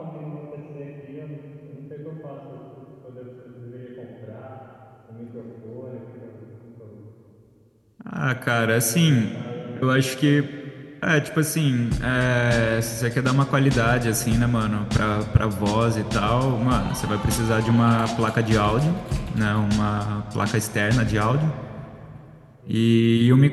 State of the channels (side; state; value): both; identical; correlation 1.00